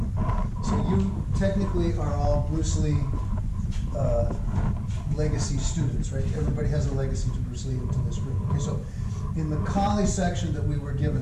So you technically are all Bruce Lee legacy students, right? Everybody has a legacy to Bruce Lee into this group. Okay, so in the Kali section that we were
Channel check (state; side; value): identical; both; correlation 1.00